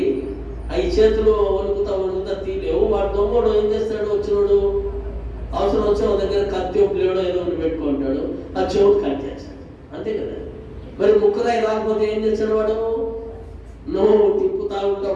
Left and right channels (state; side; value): identical; both; correlation 1.00